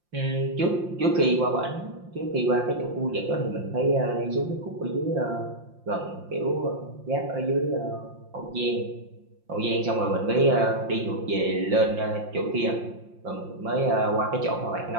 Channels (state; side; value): late; left; 5.7 ms